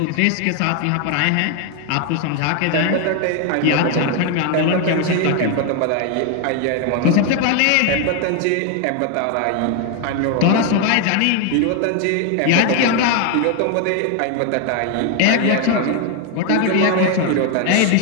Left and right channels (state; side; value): different; both; correlation 0.01